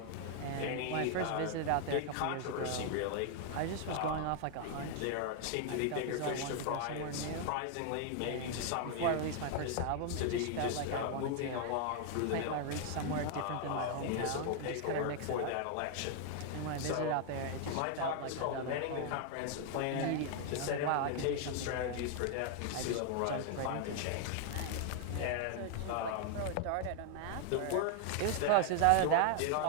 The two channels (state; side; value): different; both; correlation 0.00